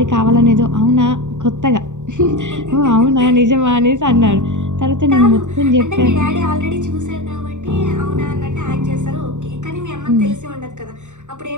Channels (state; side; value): late; left; 0.85 ms